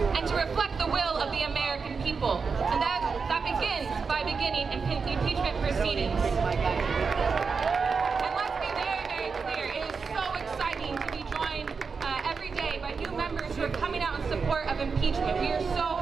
and to reflect the will of the American people. And that begins by beginning impeachment proceedings. And let's be very, very clear, it is so exciting to be joined every day by new members who are coming out in support of impeachment. We are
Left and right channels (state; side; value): quieter; left; 5.2 dB